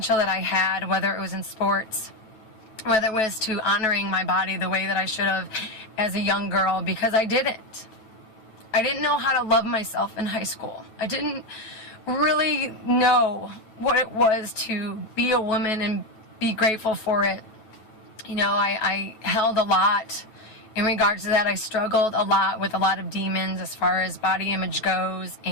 that I had, whether it was in sports, whether it was to honoring my body the way that I should have as a young girl, because I didn't. I didn't know how to love myself in high school. I didn't really know what it was to be a woman and be grateful for it. You know, I held a lot in regards to that. I struggled a lot with a lot of demons as far as body image goes,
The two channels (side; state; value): right; late; 9.2 ms